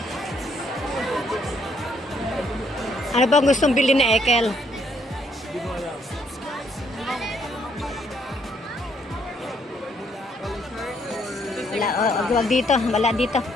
Ano bang gustong bilhin ni Ekel? Wala, wag dito, wala dito.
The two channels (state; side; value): normal; both; correlation 0.69